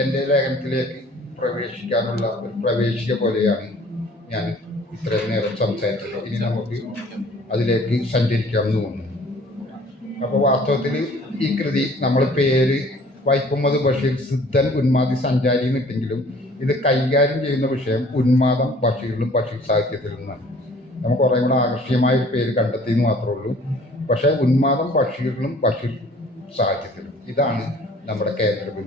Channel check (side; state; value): both; normal; correlation 0.53